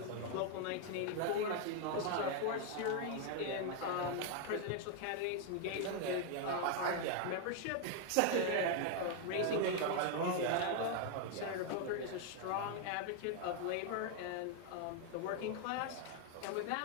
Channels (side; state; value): both; different; correlation 0.00